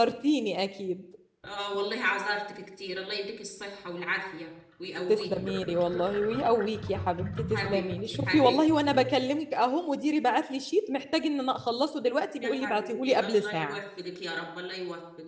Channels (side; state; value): both; identical; correlation 1.00